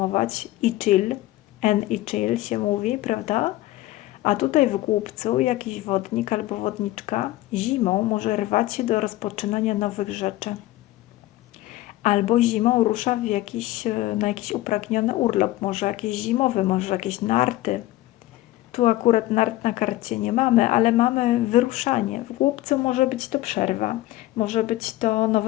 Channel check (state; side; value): quieter; right; 16.6 dB